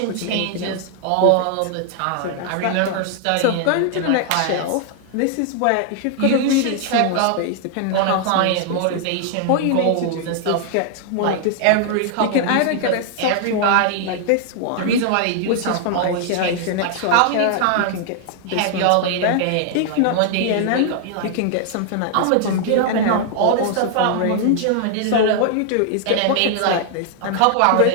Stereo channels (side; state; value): both; different; correlation 0.00